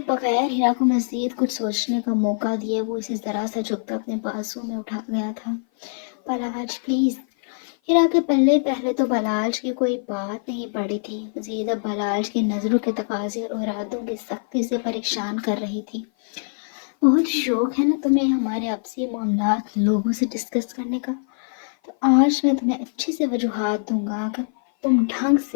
बगैर हीरा को मजीद कुछ सोचने का मौका दिए वो इसे जरा सा झुकता अपने बाजू में उठा गया था। बलाज प्लीज। हीरा के पल्ले पहले तो बलाज की कोई बात नहीं पड़ी थी, मजीद अब बलाज की नजरों के तकाजे और इरादों की सख्ती से परेशान कर रही थी। बहुत शौक है ना तुम्हें हमारे आपसी मामलात लोगों से डिस्कस करने का, तो आज मैं तुम्हें अच्छी से वजूहात दूंगा कि तुम ढंग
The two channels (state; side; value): silent; right; 56 dB below the other